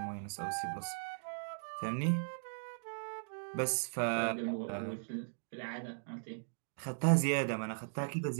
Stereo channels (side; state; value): left; silent; digital silence